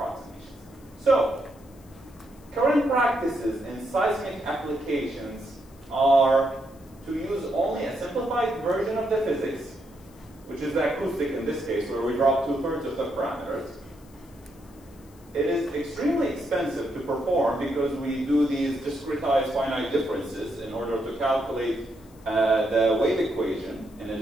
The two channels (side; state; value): left; noise; hiss, 28 dB below the sound